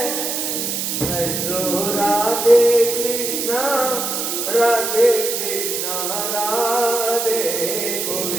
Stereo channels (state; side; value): noise; right; hiss, 2 dB below the sound